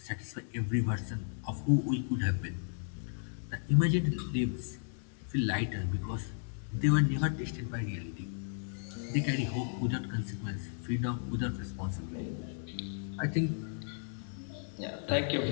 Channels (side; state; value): right; silent; digital silence